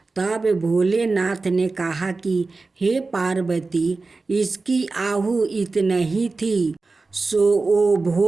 तब भोलेनाथ ने कहा कि हे पार्वती, इसकी आहु इतना ही थी सो वो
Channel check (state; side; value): quieter; left; 3.8 dB